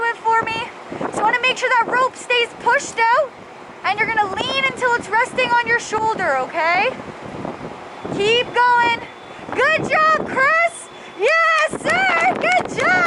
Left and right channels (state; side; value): identical; both; correlation 1.00